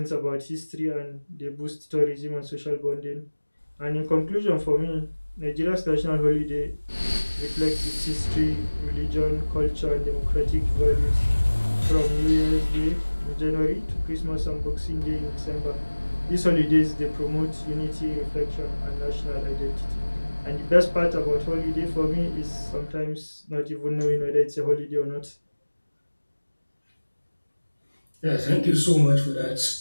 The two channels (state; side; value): inverted; both; correlation -1.00